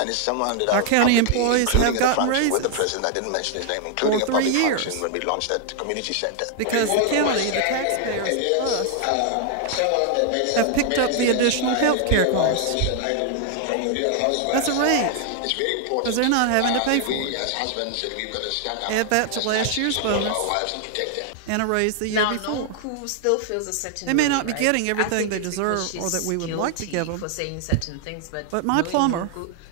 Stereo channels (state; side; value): different; both; correlation 0.00